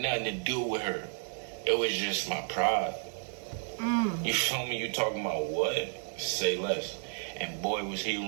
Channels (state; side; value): silent; left; 57 dB below the other